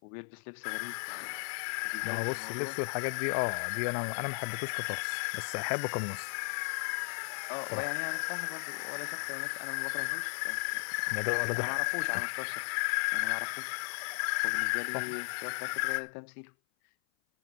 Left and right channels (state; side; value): silent; right; 55 dB below the other